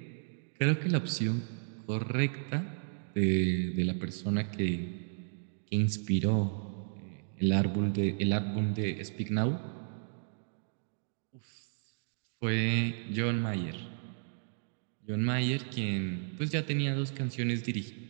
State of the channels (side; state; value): left; silent; digital silence